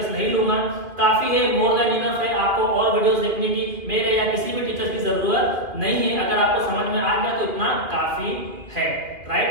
नहीं लूंगा, काफी है, मोर देन इनफ है। आपको और वीडियोस देखने की मेरे या किसी भी टीचर की जरूरत नहीं है, अगर आपको समझ में आ गया तो इतना काफी है,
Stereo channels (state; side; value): late; left; 2.3 ms